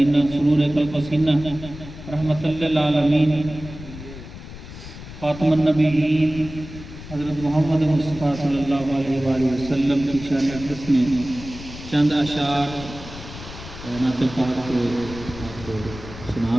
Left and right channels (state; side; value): noise; left; rumble, 13 dB below the sound